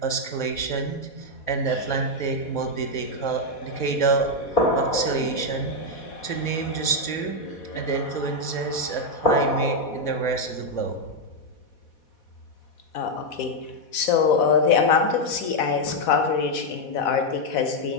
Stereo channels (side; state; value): right; late; 4.1 ms